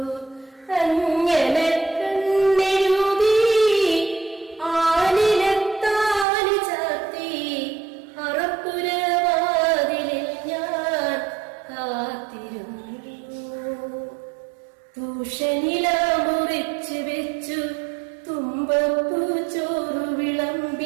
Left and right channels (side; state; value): left; drops out; at 6.2 s